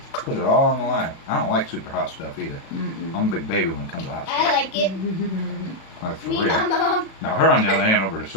Put it all on the line. I don't like super hot stuff either. I'm a big baby when it comes to hot stuff. I like it. Like for Me, real. my mom, Now her on the other hand over the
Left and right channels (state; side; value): late; right; 36 ms